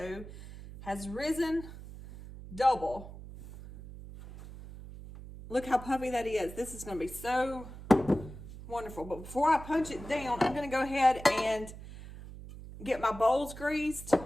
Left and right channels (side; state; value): right; noise; hum, 14 dB below the sound